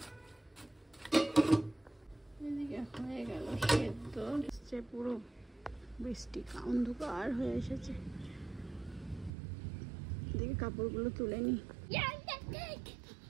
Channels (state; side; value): drops out; left; at 9.3 s